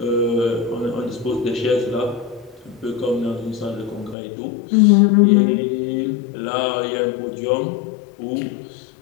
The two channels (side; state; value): right; drops out; at 4.2 s